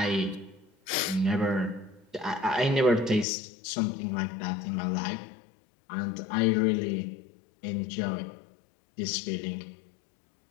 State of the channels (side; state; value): right; drops out; at 3.2 s